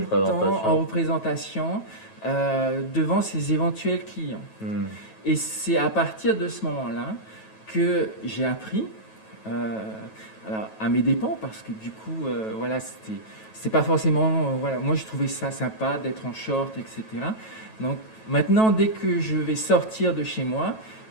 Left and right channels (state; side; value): late; right; 9.2 ms